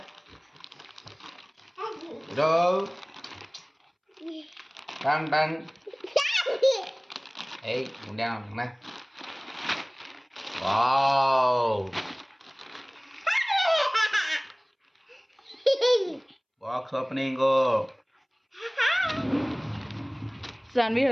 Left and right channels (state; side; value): identical; both; correlation 1.00